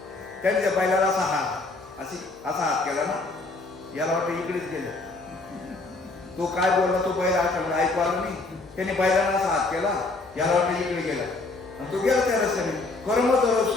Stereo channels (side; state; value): right; quieter; 3.3 dB